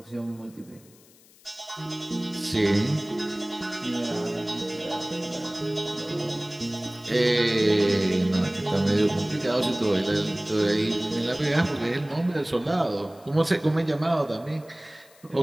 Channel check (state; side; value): noise; left; hiss, 27 dB below the sound